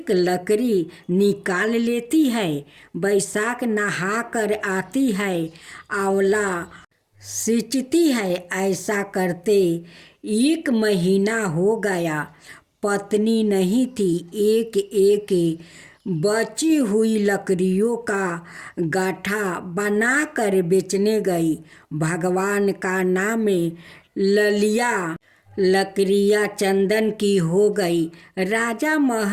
लकड़ी निकाल लेती है। वैशाख नहा कर आती है, आंवला सींचती है। ऐसा करते 1 महीना हो गया। पत्नी नहीं थी। एक एक बची हुई लकड़ियों का गाठा बनाकर बेचने गई। भगवान का नाम ललिया लकड़ियाँ चंदन की हो गई। राजा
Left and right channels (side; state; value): both; identical; correlation 1.00